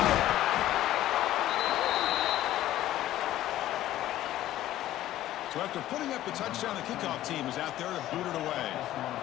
So after putting up a touchdown, the kickoff team is out there to boot it away.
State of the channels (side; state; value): right; quieter; 13.9 dB